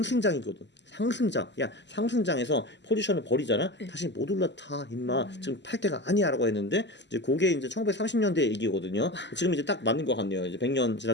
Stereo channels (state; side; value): late; right; 0.51 ms